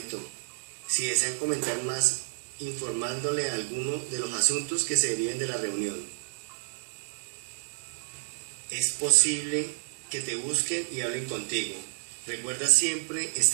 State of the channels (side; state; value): left; silent; digital silence